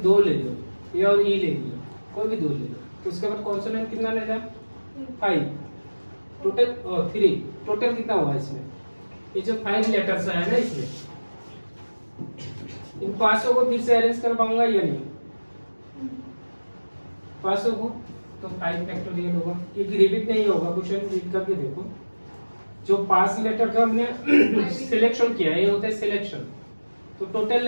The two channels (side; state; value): both; inverted; correlation -1.00